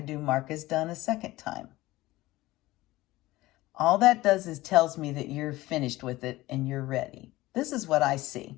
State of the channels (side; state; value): right; quieter; 18.2 dB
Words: mark as done a second time. All that does is tells me that you're finished with it and you're ready. This is what I